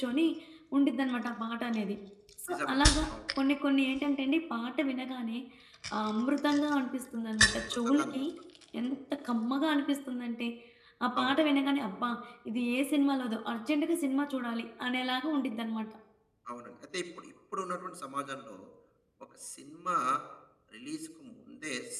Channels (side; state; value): both; identical; correlation 1.00